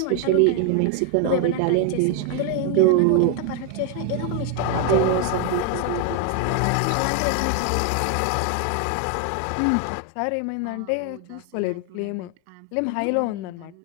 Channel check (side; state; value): both; different; correlation 0.00